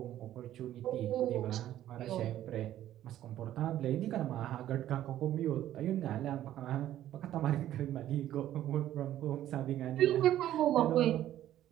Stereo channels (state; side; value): quieter; left; 12.6 dB